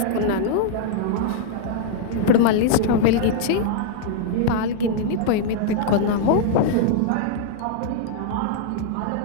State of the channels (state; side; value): different; both; correlation -0.01